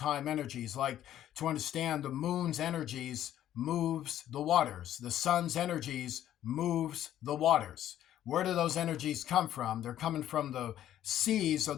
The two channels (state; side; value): quieter; right; 11.8 dB